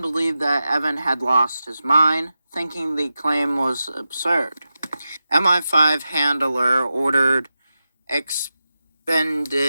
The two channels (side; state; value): both; inverted; correlation -0.91